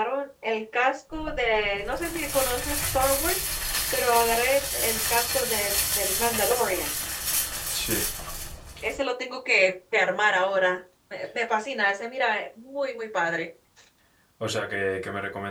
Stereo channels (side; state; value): both; identical; correlation 1.00